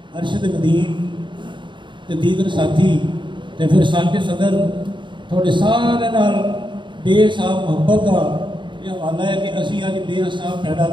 अरशद नदीम ते दीगर साथी ते फिर साके सदर थोड़े सारे नाल बेसाब मोहब्बत का यह हवाला है कि असी अज बेसाब पैदा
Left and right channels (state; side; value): late; left; 0.23 ms